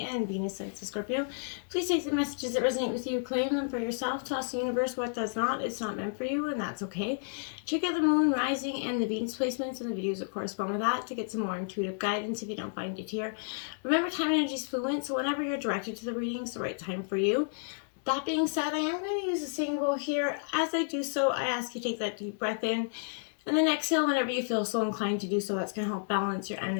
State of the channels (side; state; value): right; silent; 57 dB below the other